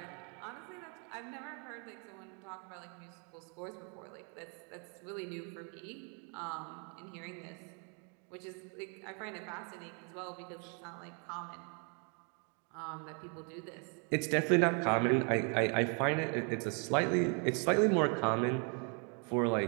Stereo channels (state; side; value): quieter; left; 37.6 dB